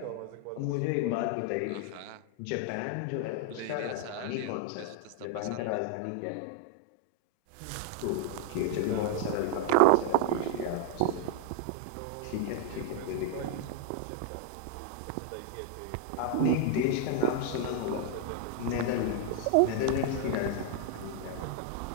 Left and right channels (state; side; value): different; both; correlation 0.00